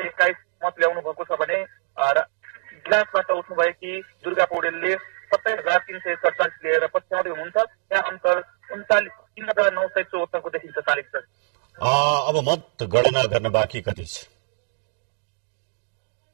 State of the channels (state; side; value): silent; left; 63 dB below the other